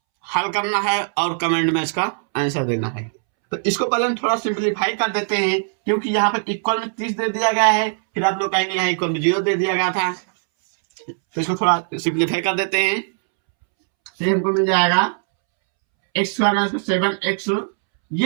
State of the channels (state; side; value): silent; left; 66 dB below the other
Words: हल करना है और कमेंट में इसका आंसर देना है। तो इसको पहले हम थोड़ा सिंपलीफाई कर देते हैं, क्योंकि यहाँ पर इक्वल में 30 दे दिया गया है, फिर आप लोग कहेंगे यहाँ इक्वल में 0 दे दिया गया था। तो इसको थोड़ा सिंपलीफाई कर देते हैं, तो हमको मिल जाएगा एक्स स्क्वायर माइनस 7x।